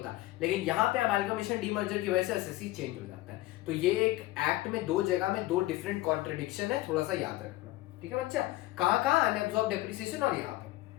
लेकिन यहाँ पे अमेलगमेशन डीमर्जर की वजह से असेसी चेंज हो जाता है। तो ये एक एक्ट में 2 जगह में 2 डिफरेंट कॉन्ट्रडिक्शन है, थोड़ा सा याद रखना, ठीक है बच्चा। कहाँ अनएब्सॉर्ब डेप्रिसिएशन और यहाँ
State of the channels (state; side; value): quieter; right; 17.8 dB